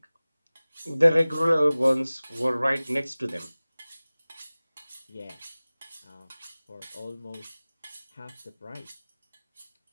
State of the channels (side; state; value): both; inverted; correlation -0.98